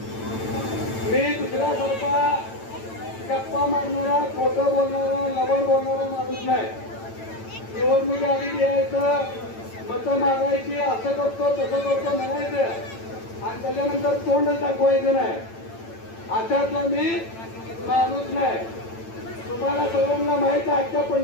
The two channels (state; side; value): late; right; 9.0 ms